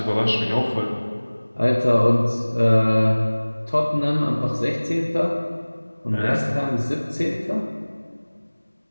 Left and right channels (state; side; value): inverted; both; correlation -1.00